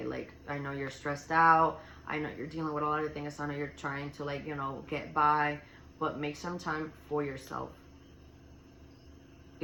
like, I know you're stressed out. I know you're dealing with a lot of things. I know you're trying to, like, you know, get by, but make some time for yourself.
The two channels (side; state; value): both; identical; correlation 1.00